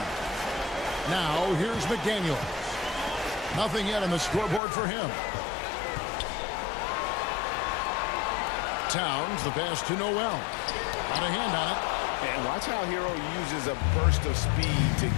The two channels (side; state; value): right; drops out; at 4.6 s